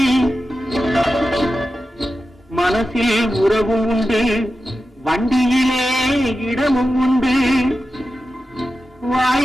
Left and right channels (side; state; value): both; normal; correlation 0.92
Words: மனசில் உறவும் உண்டு, வண்டியிலே இடமும் உண்டு.